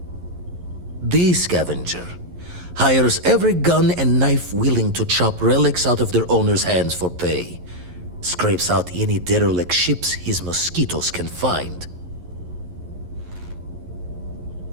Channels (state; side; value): late; left; 11 ms